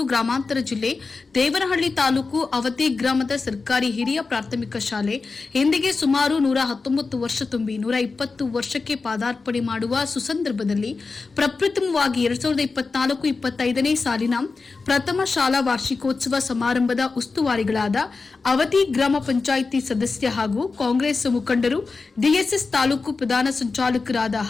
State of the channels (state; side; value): quieter; right; 4.2 dB